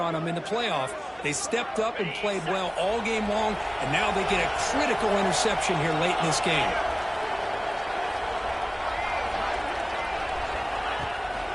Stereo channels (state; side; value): identical; both; correlation 1.00